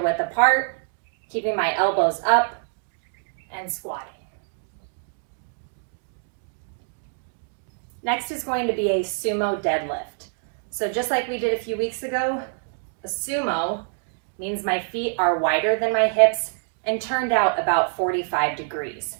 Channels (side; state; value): left; silent; digital silence